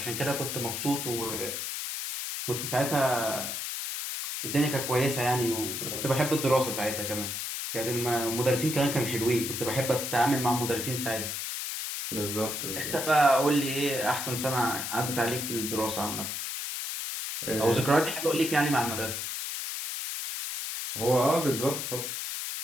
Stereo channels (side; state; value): left; noise; hiss, 4 dB below the sound